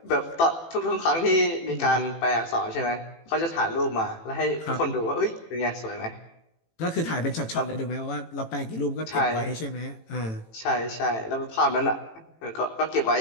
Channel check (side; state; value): right; late; 18 ms